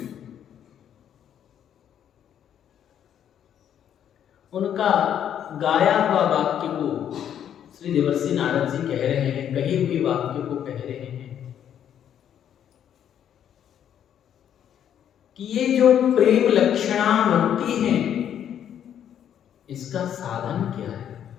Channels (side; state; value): right; quieter; 9.6 dB